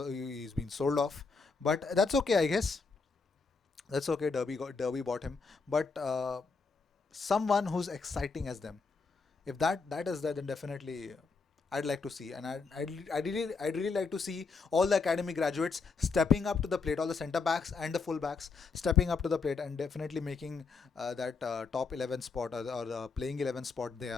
been sold off. But that's okay, I guess. That's okay. Derby bought him, but someone who's exciting as them. If that is there, then definitely I'd like to see, and I'd really like to see all the academy graduates stepping up to the plate, all the centre backs and the full backs stepping up to the plate, and definitely making that top 11 spot, or the playing 11 spot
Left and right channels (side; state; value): right; quieter; 4.6 dB